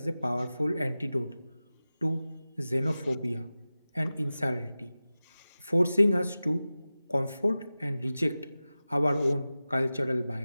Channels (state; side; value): inverted; both; correlation -0.96